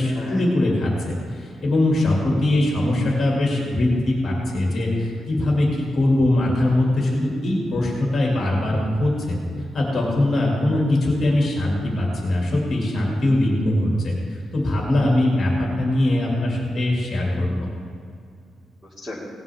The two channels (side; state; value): both; normal; correlation 0.92